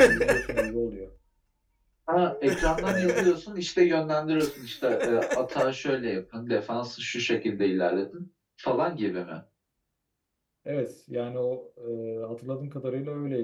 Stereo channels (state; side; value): identical; both; correlation 1.00